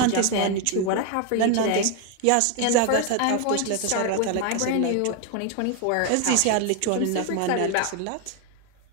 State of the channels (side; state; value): both; different; correlation 0.01